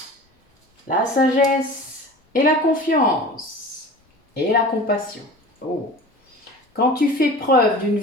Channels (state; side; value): normal; both; correlation 0.38